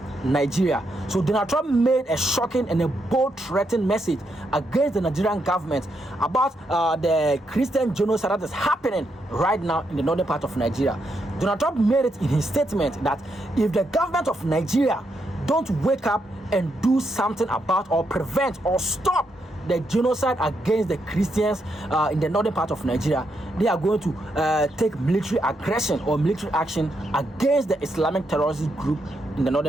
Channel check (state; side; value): normal; both; correlation 0.80